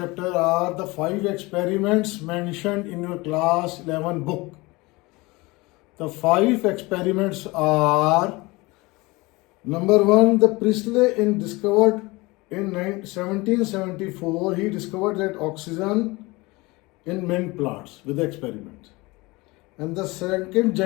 are the 5 experiments mentioned in your class 11 book. The 5 experiments are: number 1, the Priestley discovered in 1774, he discovered that oxygen in mint plants with the experiment. And the second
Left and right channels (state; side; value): quieter; right; 23.2 dB